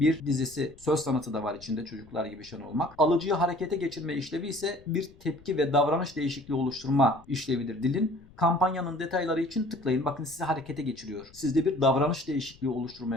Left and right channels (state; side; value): noise; left; rumble, 25 dB below the sound